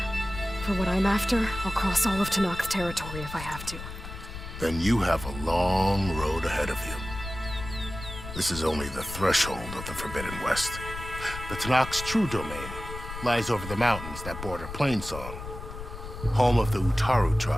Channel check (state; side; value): noise; left; rumble, 10 dB below the sound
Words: For what I'm after, I'll cross all of Tenakth territory if I have to. Then you have a long road ahead of you. This is only the threshold of the Forbidden West. The Tenakth's true domain lies over the mountains that border Plainsong, home of the Utaru